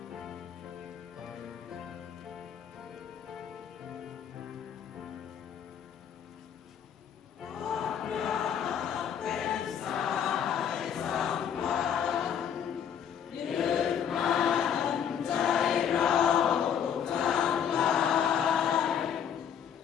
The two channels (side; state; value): right; quieter; 8.4 dB